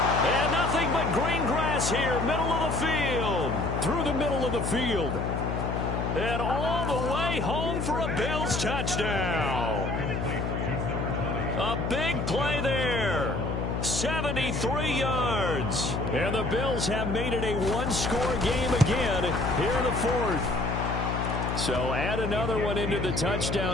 nothing but green grass here, middle of the field. Through the middle of the field. And all the way home for a Bills touchdown. A big play there. 73 yards. And the Bills have made it a one-score game again here in the 4th. So add another one into the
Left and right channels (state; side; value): noise; left; hum, 2 dB below the sound